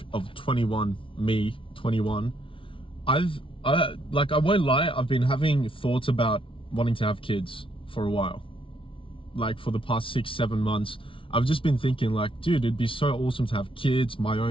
of 21, me, 21, I won't lie, I've been having thoughts about wanting to have kids for a while. Like for the past 6-7 months, I've just been thinking like, dude, it'd be so awesome to have kids, my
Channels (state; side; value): late; right; 0.25 ms